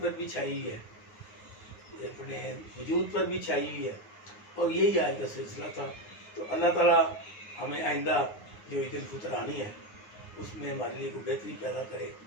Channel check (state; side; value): late; right; 9.5 ms